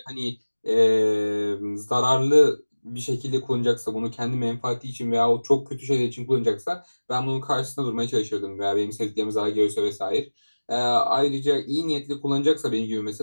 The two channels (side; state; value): both; inverted; correlation -1.00